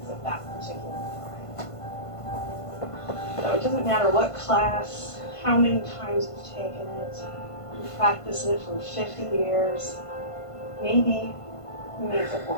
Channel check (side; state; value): right; late; 1.5 ms